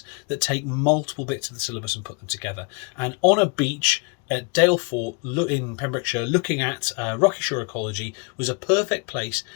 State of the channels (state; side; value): quieter; right; 33.8 dB